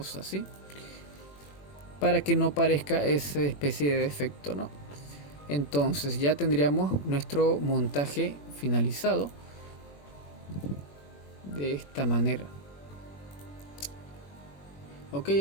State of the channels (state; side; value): late; right; 21 ms